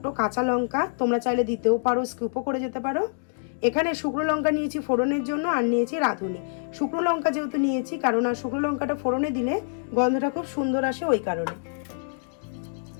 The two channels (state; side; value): silent; right; digital silence